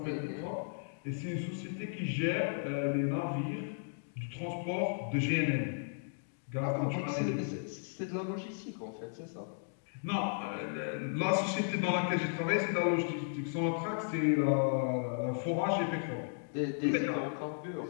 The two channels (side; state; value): right; silent; digital silence